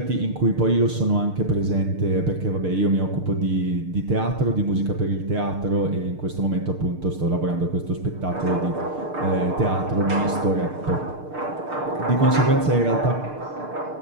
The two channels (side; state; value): left; late; 6.6 ms